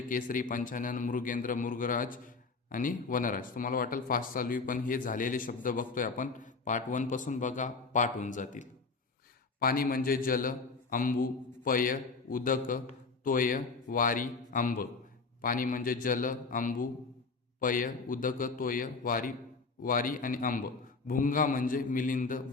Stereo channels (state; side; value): quieter; right; 4.3 dB